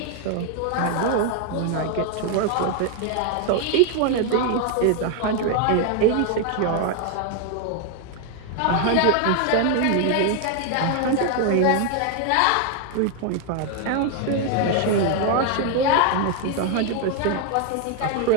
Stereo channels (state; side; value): different; both; correlation 0.00